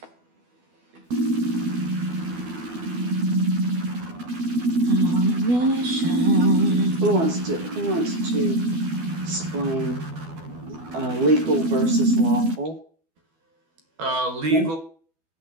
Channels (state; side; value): late; left; 12 ms